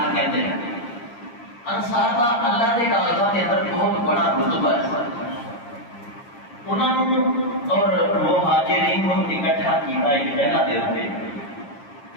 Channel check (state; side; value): late; right; 8.6 ms